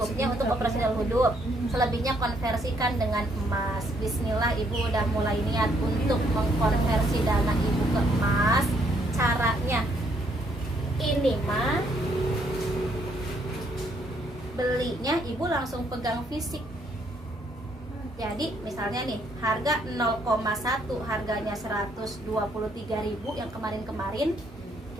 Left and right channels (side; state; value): both; normal; correlation 0.70